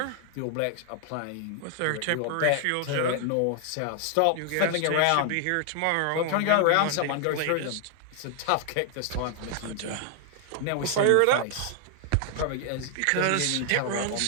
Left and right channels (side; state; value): both; different; correlation 0.00